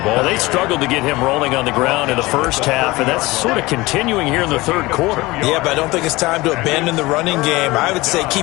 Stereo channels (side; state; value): right; quieter; 20.9 dB